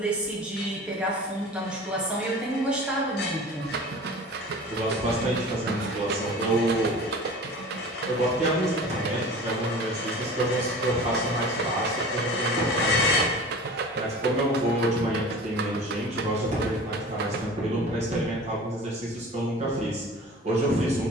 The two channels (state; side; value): normal; both; correlation 0.39